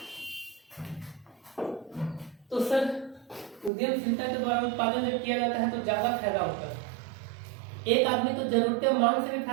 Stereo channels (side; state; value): left; drops out; at 3.7 s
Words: तो सर उद्यमशीलता के द्वारा उत्पादन जब किया जाता है तो ज्यादा फायदा होता है। एक आदमी तो जरूरतें मांग से भी